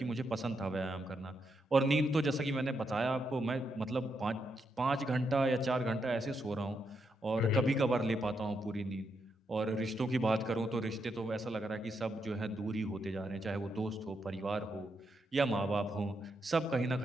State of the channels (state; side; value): normal; both; correlation 0.81